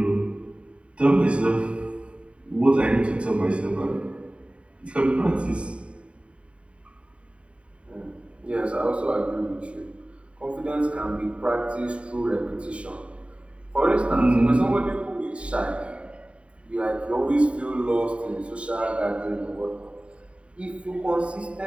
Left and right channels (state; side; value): late; left; 0.060 ms